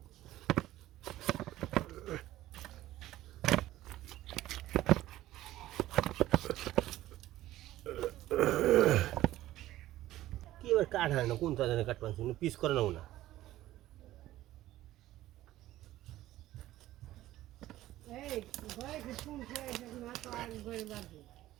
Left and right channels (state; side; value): quieter; left; 15.0 dB